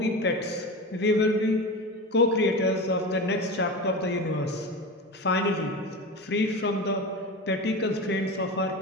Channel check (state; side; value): normal; both; correlation 0.26